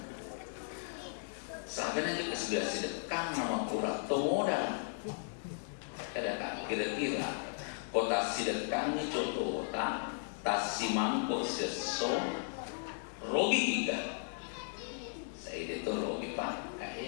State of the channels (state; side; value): silent; right; digital silence